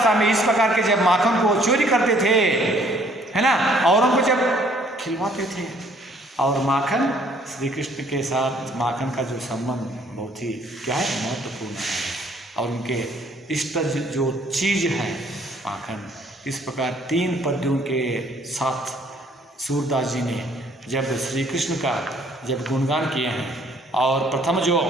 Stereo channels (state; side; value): normal; both; correlation 0.61